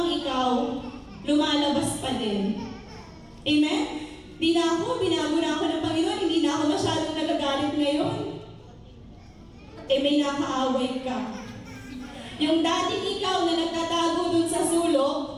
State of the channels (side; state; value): both; identical; correlation 1.00